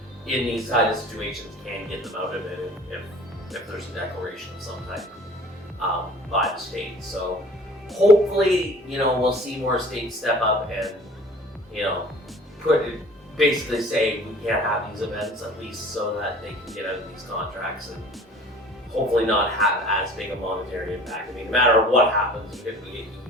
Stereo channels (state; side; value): normal; both; correlation 0.47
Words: in these kind of situations can get them out of it if there's a declaration of some type by the state. So hopefully, we'll see more states step up and basically say we can't have these events, at least so that they can get out of these contracts and hopefully not have as big a monetary impact. I mean, no matter what happens, you're going to get a